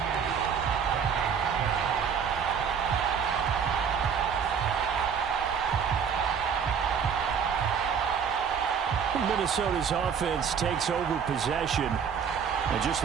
Minnesota's offense takes over possession. And just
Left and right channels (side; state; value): left; quieter; 7.0 dB